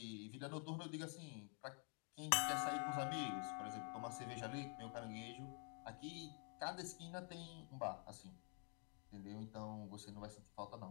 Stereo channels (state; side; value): quieter; right; 35.8 dB